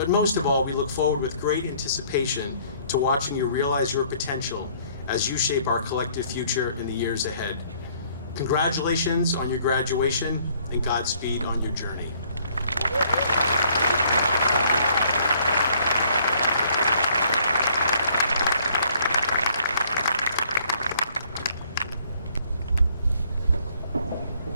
most of all, we look forward with great anticipation to watching you realize your potential as you shape our collective future in the years ahead. Congratulations on your graduation and Godspeed on your journey.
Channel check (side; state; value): both; inverted; correlation -0.61